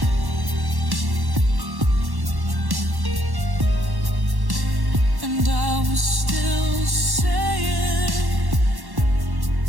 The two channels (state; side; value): late; left; 1.1 ms